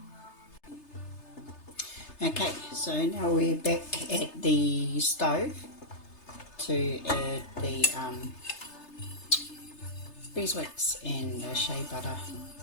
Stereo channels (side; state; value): right; late; 3.3 ms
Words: Okay, so now we're back at the stove to add the beeswax and the shea butter